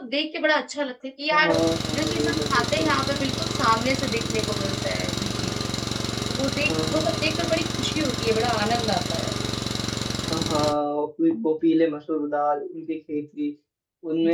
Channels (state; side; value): identical; both; correlation 1.00